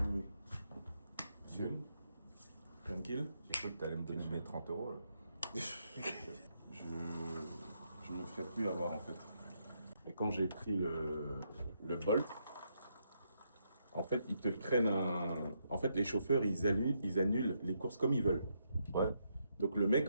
Monsieur. Tranquille. J'ai cru que tu allais me donner mes 30 €. Je me ferai plus avoir en fait. Et quand j'ai pris le Bolt, en fait, ils te prennent En fait, les chauffeurs, ils annulent les courses comme ils veulent. Ouais. Donc le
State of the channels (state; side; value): inverted; both; correlation -0.78